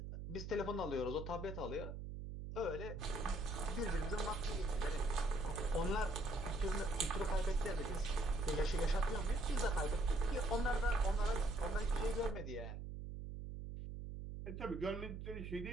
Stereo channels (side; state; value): right; noise; hum, 7 dB below the sound